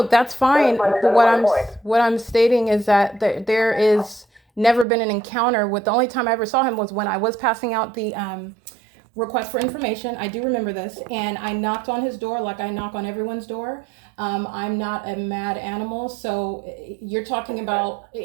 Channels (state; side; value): drops out; left; at 4.9 s